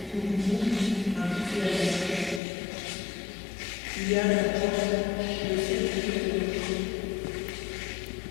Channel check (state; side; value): drops out; right; at 2.4 s